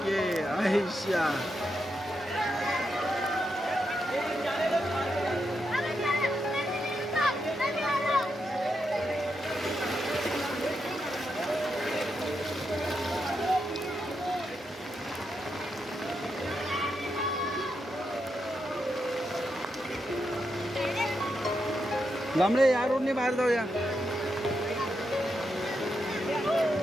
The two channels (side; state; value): both; normal; correlation 0.84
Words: आयशा. लांबळे या रोडने बाहेर जाऊया.